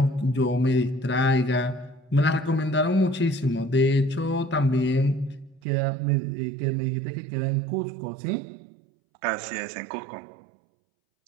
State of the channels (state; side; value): drops out; left; at 5.6 s